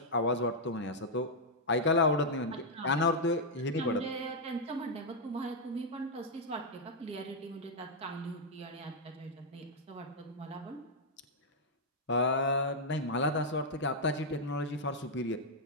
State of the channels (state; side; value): normal; both; correlation -0.04